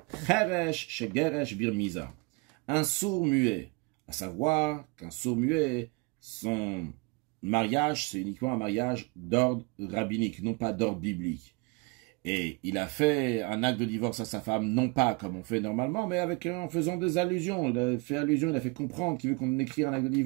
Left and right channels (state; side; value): quieter; left; 29.3 dB